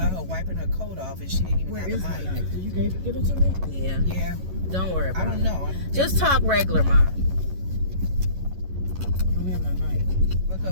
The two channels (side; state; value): left; late; 11 ms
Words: her wiping her coat off and she didn't even Where have is the my mic. knife? Did you give it to me? Yeah. Yeah. Don't worry about it. I don't know. Just talk regular, Ma. I don't have my mic. Look